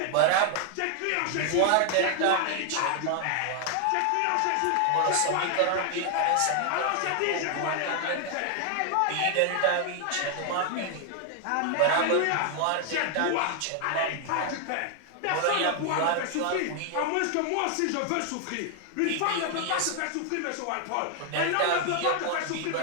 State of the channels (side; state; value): both; different; correlation 0.00